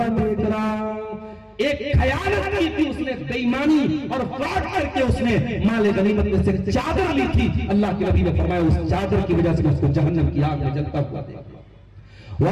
देख रहा हूं। एक खयानत की थी उसने, बेईमानी और फ्रॉड करके उसने माले गनीमत में से चादर ली थी। अल्लाह के नबी ने फरमाया उस चादर की वजह से उसको जहन्नम की आग में जलता हुआ देख रहा।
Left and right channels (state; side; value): identical; both; correlation 1.00